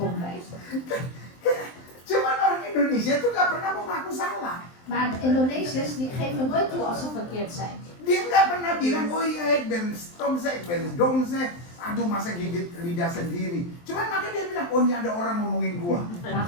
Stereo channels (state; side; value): late; right; 23 ms